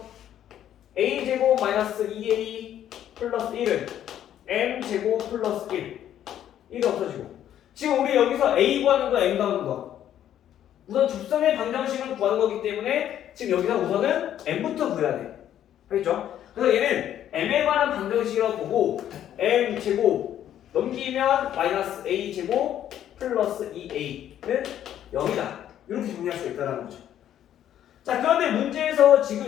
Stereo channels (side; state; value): right; quieter; 10.9 dB